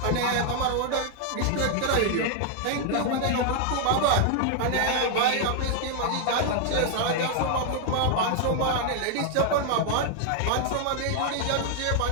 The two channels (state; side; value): different; both; correlation 0.00